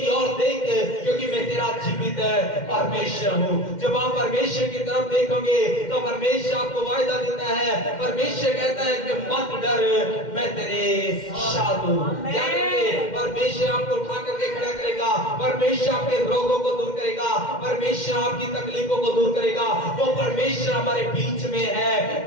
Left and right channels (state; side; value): late; right; 2.1 ms